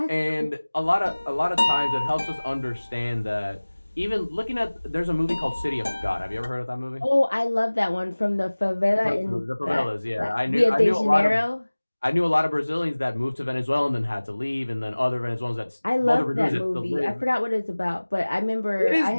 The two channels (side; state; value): both; inverted; correlation -1.00